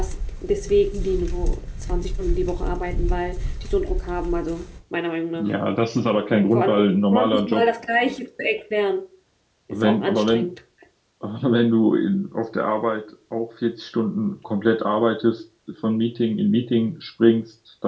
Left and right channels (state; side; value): identical; both; correlation 1.00